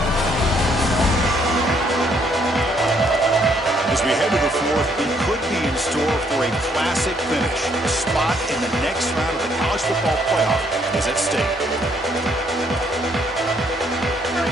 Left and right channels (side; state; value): both; normal; correlation 0.69